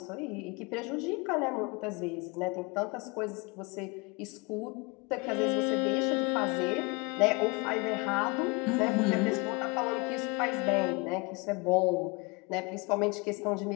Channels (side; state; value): right; quieter; 28.2 dB